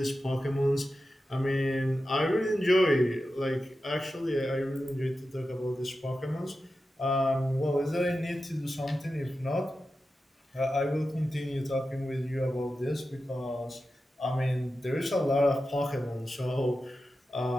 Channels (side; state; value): both; normal; correlation 0.91